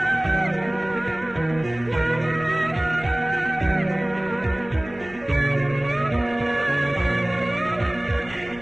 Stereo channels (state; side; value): noise; left; rumble, 20 dB below the sound